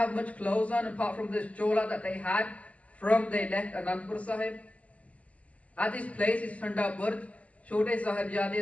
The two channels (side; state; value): right; late; 0.068 ms